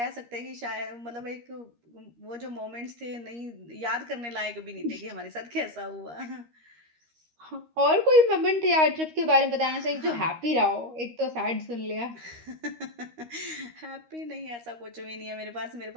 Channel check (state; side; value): late; left; 13 ms